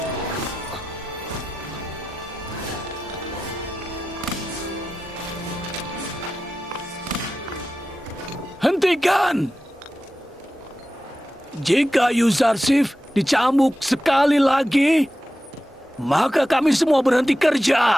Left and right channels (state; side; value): normal; both; correlation 0.92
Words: Hentikan! Jika Yuzarsif dicambuk sekali lagi, maka kami semua berhenti